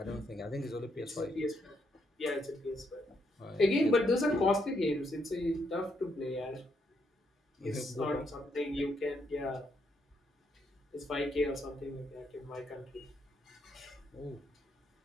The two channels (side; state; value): both; normal; correlation 0.76